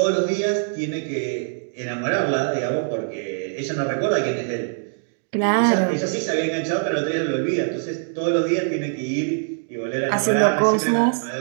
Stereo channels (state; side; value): silent; left; digital silence